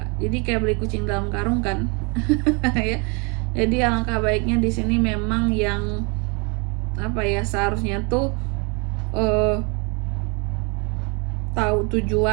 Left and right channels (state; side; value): quieter; left; 32.1 dB